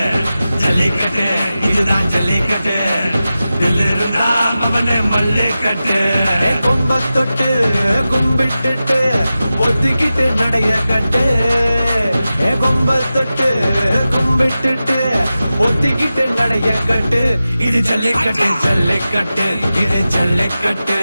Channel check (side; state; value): both; inverted; correlation -0.94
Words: ஜல்லிக்கட்டு இதுதான் ஜல்லிக்கட்டு தில்லு இருந்தா மவனே மல்லிக்கட்டு கொம்ப தொட்டு கும்பிட்டுட்டு ஒத்திக்கிட்டு நடைய கட்டு கொம்ப தொட்டு கும்பிட்டுட்டு ஒத்திக்கிட்டு நடைய கட்டு இது ஜல்லிக்கட்டு ஜல்லிக்கட்டு இது ஜல்லிக்கட்டு